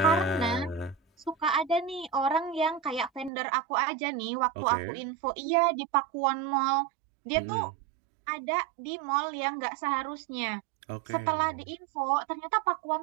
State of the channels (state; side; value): drops out; left; at 3.3 s